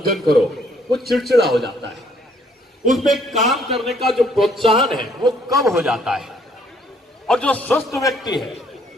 करो, वो चिड़चिड़ा हो जाता है। उसमें काम करने का जो प्रोत्साहन है वो कम हो जाता है। और जो स्वस्थ व्यक्ति है,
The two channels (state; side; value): normal; both; correlation 0.65